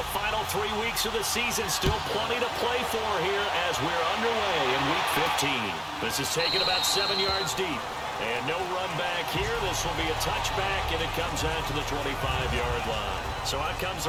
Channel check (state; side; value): identical; both; correlation 1.00